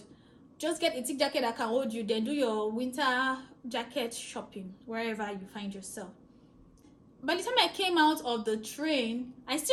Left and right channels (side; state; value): both; identical; correlation 1.00